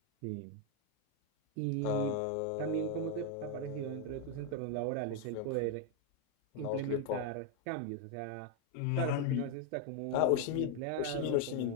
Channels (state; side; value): different; both; correlation 0.01